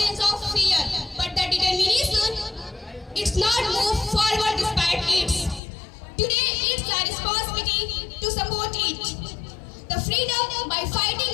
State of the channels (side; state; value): right; drops out; at 5.6 s